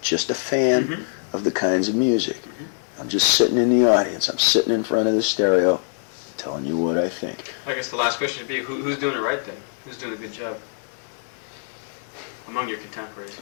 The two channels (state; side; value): silent; right; digital silence